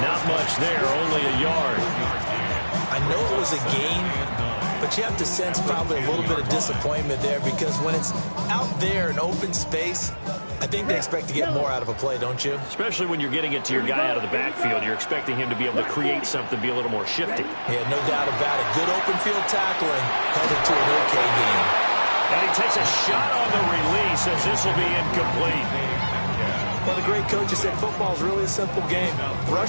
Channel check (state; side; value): inverted; both; correlation -1.00